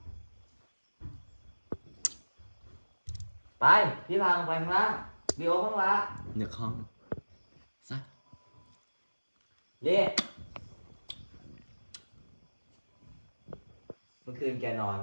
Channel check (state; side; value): inverted; both; correlation -1.00